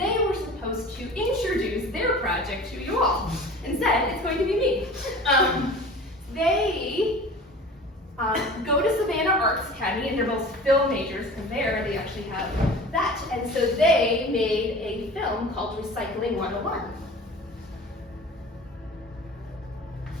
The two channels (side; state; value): both; normal; correlation 0.40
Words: were supposed to introduce their project to you all. Instead, it's going to be me. they go to Savannah Arts Academy, and they're both film majors, because there they actually have that. And so they made a film called Recycling 101.